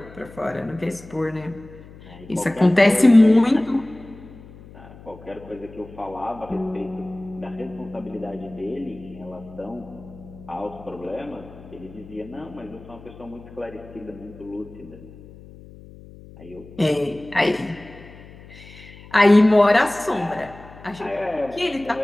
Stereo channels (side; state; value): left; noise; hum, 19 dB below the sound